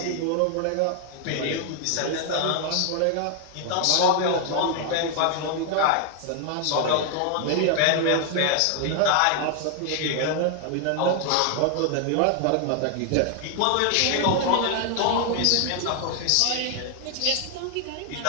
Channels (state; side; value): different; both; correlation 0.00